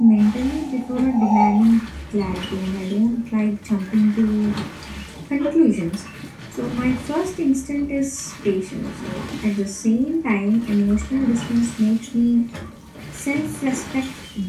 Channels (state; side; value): identical; both; correlation 1.00